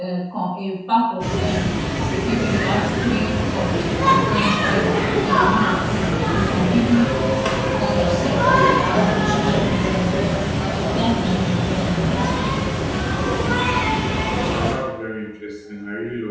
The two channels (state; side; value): identical; both; correlation 1.00